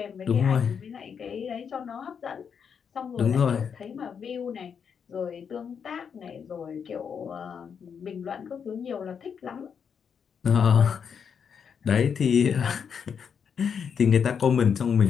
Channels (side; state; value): right; quieter; 7.0 dB